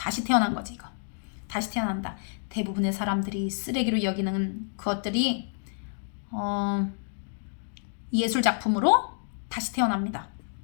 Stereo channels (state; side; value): silent; right; digital silence